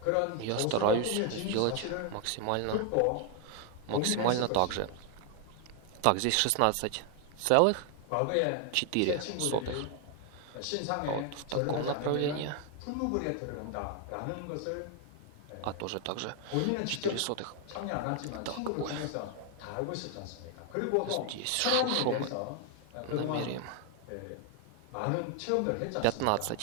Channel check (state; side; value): different; both; correlation 0.01